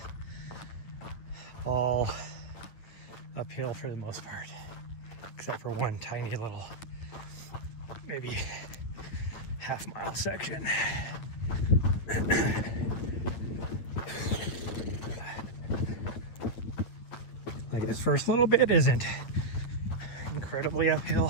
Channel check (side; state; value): right; late; 9.0 ms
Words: all uphill for the most part, except for one tiny little, maybe half-mile section. Like this first little bit isn't incredibly